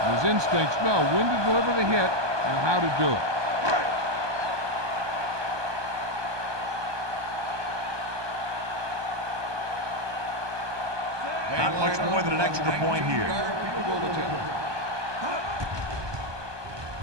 His instincts know when to deliver the hit and how to do it. Not much more than an extra point here.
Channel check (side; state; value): left; late; 1.2 ms